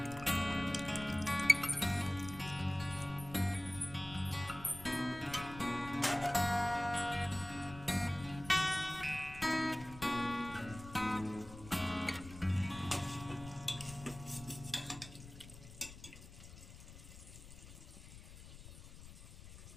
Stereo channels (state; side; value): noise; left; rumble, 16 dB below the sound